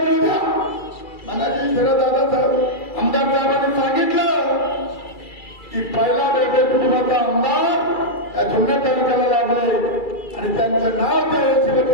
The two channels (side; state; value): right; late; 2.3 ms